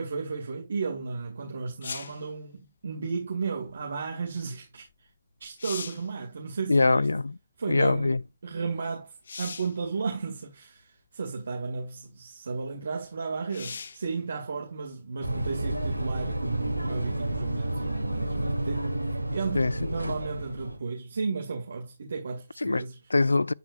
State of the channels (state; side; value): inverted; both; correlation -0.90